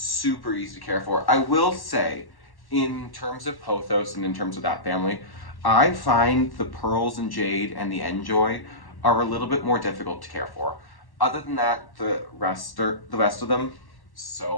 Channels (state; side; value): late; right; 1.1 ms